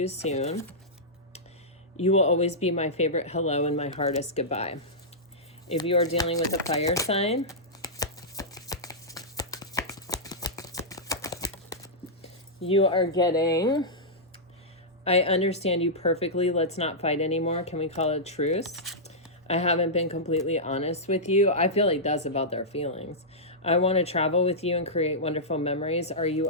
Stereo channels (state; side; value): normal; both; correlation -0.11